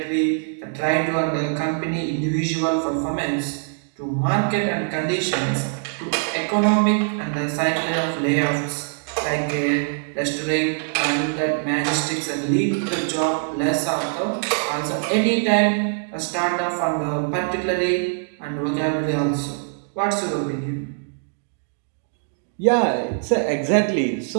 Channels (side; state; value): left; silent; digital silence